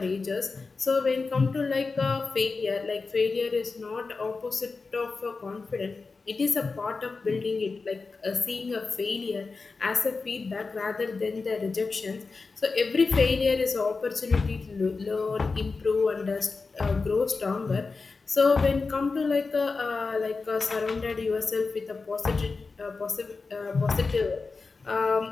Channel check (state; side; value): quieter; right; 4.2 dB